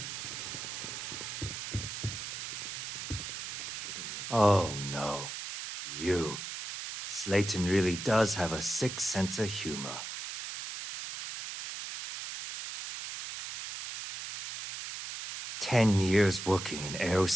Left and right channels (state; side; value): noise; right; hiss, 7 dB below the sound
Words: Oh no. You. Slayton really does have a sick sense of humor. "10 years working in